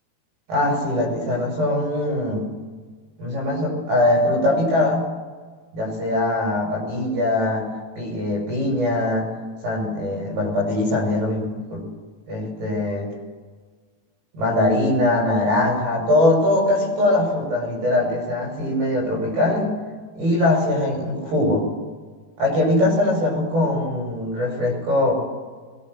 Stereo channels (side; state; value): left; late; 18 ms